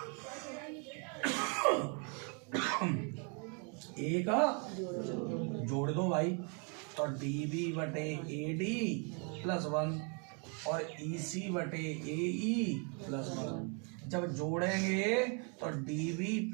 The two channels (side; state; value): left; quieter; 37.0 dB